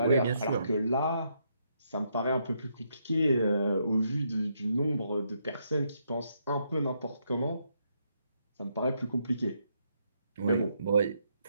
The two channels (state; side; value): inverted; both; correlation -0.76